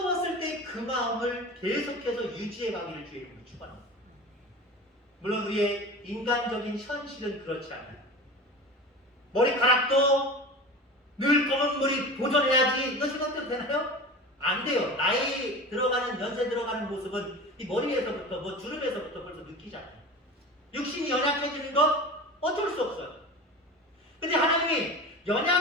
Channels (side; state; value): both; normal; correlation 0.33